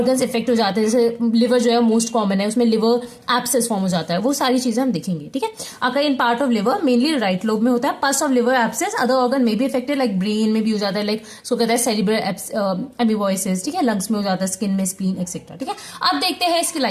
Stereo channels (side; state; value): both; identical; correlation 1.00